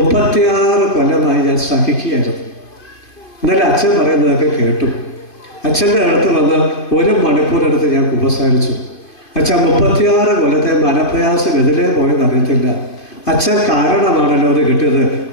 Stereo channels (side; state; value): right; late; 2.5 ms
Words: കൊല്ലമായി ഞാൻ സഹിക്കുകയായിരുന്നു. എന്നാലും അച്ഛൻ പറയുന്നതൊക്കെ കേട്ടു. അച്ഛൻ്റെ അടുത്ത് വന്ന് 1 മണിക്കൂറെടുത്ത് ഞാൻ കുമ്പസാരിച്ചു. അച്ഛൻ 36 കൊല്ലത്തെ മനപ്രയാസം എതിരെ പോയെന്ന് അറിയത്തില്ല. അച്ഛൻ കാരണമാണല്ലോ അത് കിട്ടിയത്.